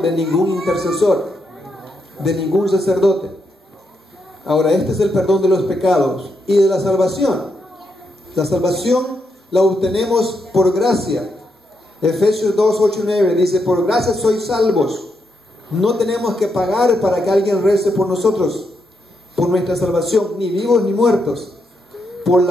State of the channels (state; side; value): normal; both; correlation 0.81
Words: de ningún intercesor, de ningún sacerdote. Ahora, este es el perdón de los pecados y de la salvación. La salvación la obtenemos por gracia. Efesios 2:8-9 dice: por gracia sois salvos. No tenemos que pagar para que alguien rece por nosotros, por nuestra salvación, ni vivos ni muertos, por